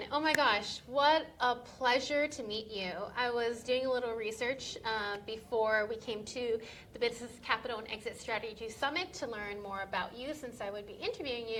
oh my gosh, what a pleasure to meet you. I was doing a little research before we came to the Business Capital and Exit Strategy Summit to learn more about you since I would be interviewing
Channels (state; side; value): identical; both; correlation 1.00